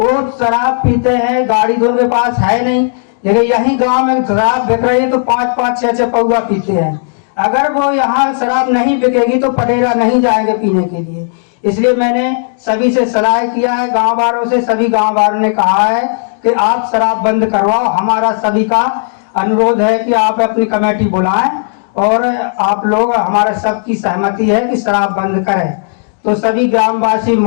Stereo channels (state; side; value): silent; right; digital silence